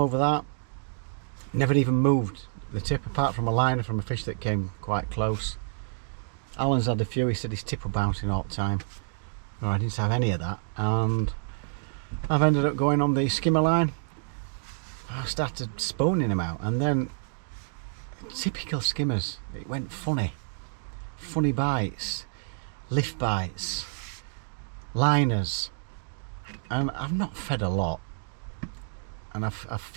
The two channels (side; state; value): left; silent; digital silence